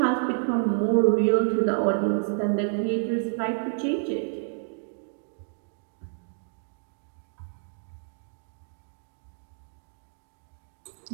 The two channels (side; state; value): left; silent; digital silence